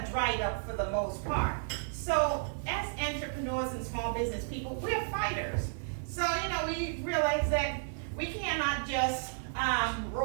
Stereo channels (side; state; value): left; silent; 56 dB below the other